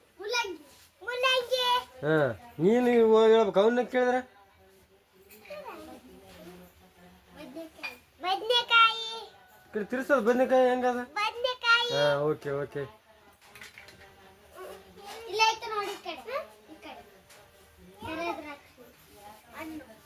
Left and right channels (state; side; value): identical; both; correlation 1.00